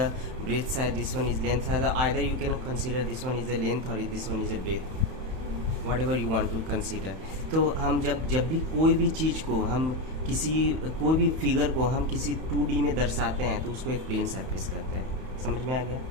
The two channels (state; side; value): late; left; 31 ms